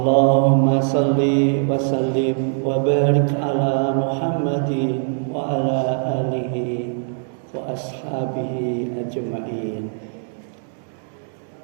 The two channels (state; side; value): silent; left; digital silence